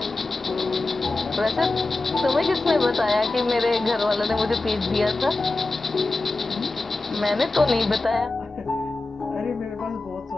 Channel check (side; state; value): right; quieter; 3.2 dB